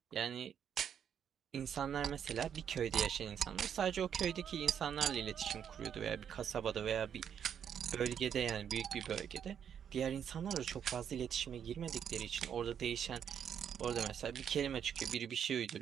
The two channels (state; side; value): quieter; left; 8.4 dB